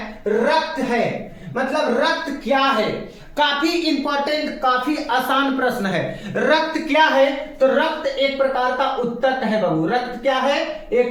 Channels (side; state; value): both; identical; correlation 1.00